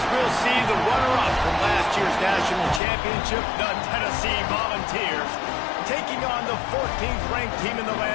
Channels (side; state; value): right; drops out; at 2.8 s